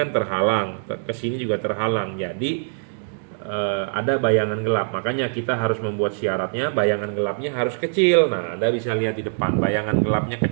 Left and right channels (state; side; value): silent; left; digital silence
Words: terhalang, ke sini juga terhalang. Jadi ada bayangan gelap, makanya kita harus membuat syaratnya bayangan gelapnya harus kecil. Nah, Anda bisa lihat di depan, bayangan gelapnya